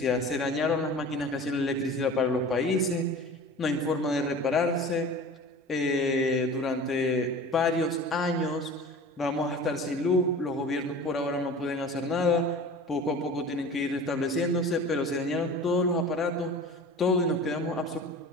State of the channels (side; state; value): both; normal; correlation 0.39